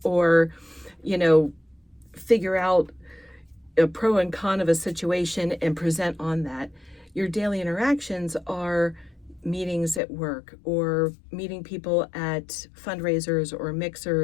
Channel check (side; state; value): right; drops out; at 10.0 s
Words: or, figure out a pro and con of a situation and present on that. Your daily interactions are meetings at work or meeting people at fundraisers or